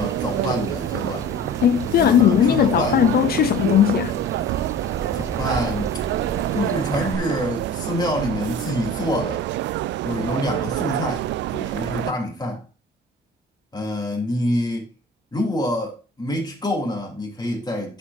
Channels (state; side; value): normal; both; correlation 0.42